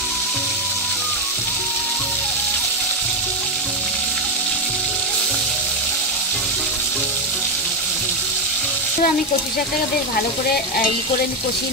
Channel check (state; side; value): normal; both; correlation 0.07